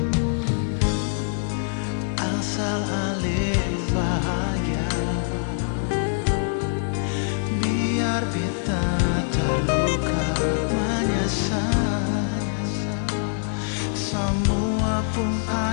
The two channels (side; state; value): right; silent; 62 dB below the other